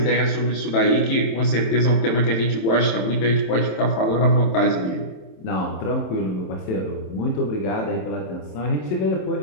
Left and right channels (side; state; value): right; late; 27 ms